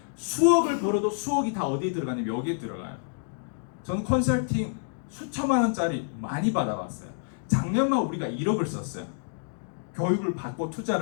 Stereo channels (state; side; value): silent; right; digital silence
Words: 수억을 벌어도 수억이 다 어디에 들어가냐면 여기에 들어가요. 저는 컨설팅 수천만 원짜리 많이 받아봤어요. 작년만 우리가 1억을 썼어요. 교육을 받고